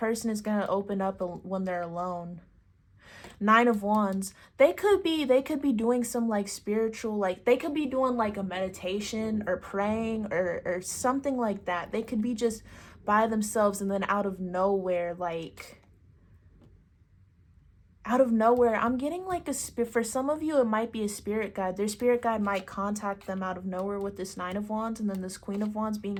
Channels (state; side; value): identical; both; correlation 1.00